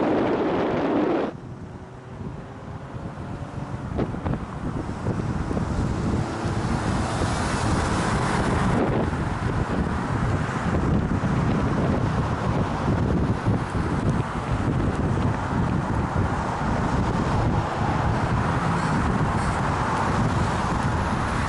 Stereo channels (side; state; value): both; identical; correlation 1.00